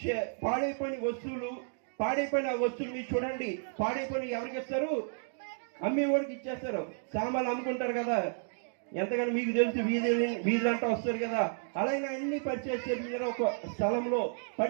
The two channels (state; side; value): silent; left; digital silence